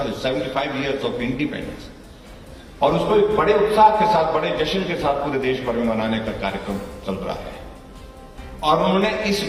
ईयर्स ऑफ इंडिपेंडेंस, और उसको एक बड़े उत्साह के साथ, बड़े जश्न के साथ पूरे देश भर में मनाने का कार्यक्रम चल रहा है। और उन्होंने इस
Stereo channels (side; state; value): both; identical; correlation 1.00